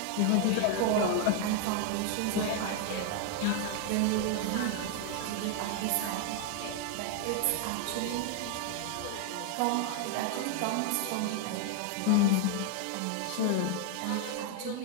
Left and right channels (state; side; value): different; both; correlation 0.00